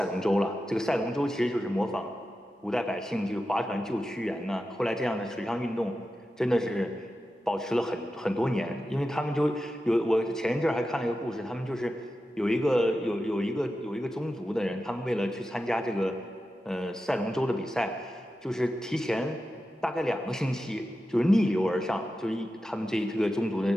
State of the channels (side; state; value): both; normal; correlation 0.91